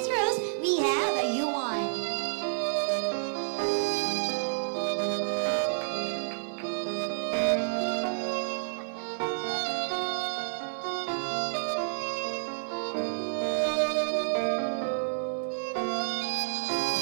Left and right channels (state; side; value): silent; left; 58 dB below the other